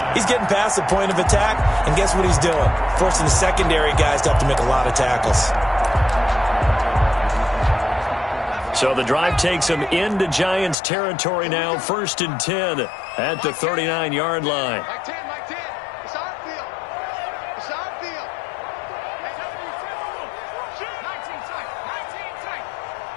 he's getting past the point of attack, and guess what he's doing? Forcing the secondary guys to have to make a lot of tackles. So the drive takes him into Giants territory now. 1st and 10 at the 39-yard line.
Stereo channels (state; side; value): drops out; right; at 10.8 s